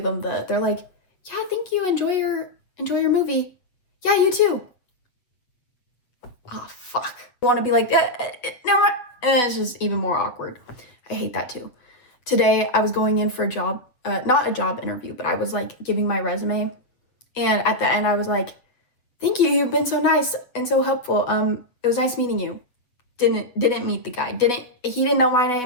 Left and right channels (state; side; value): late; right; 7.9 ms